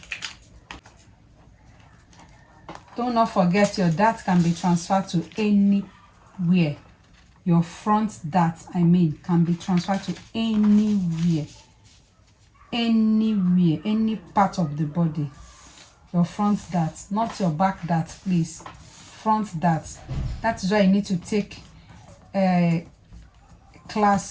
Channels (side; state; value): both; identical; correlation 1.00